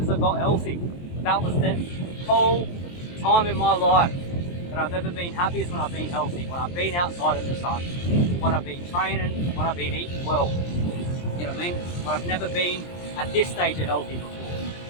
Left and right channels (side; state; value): right; late; 23 ms